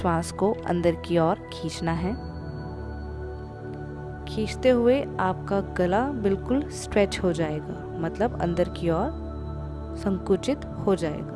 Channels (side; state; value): both; identical; correlation 1.00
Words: को अंदर की ओर खींचना है। खींचते हुए आपका गला बिल्कुल स्ट्रेच हो जाएगा, मतलब अंदर की ओर संकुचित हो